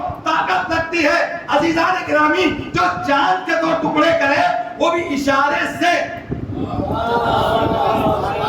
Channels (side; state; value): both; identical; correlation 1.00